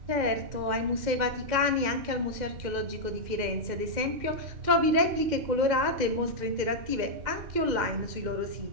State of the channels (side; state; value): left; late; 2.1 ms